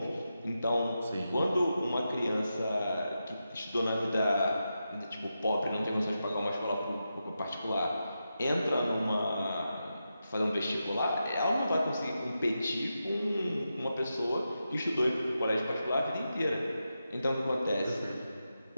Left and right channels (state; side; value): inverted; both; correlation -0.89